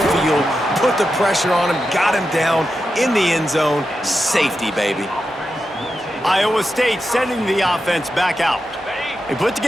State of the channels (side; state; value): both; normal; correlation 0.89